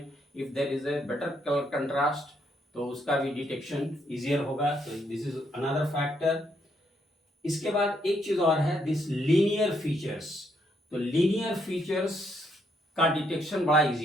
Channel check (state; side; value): normal; both; correlation 0.74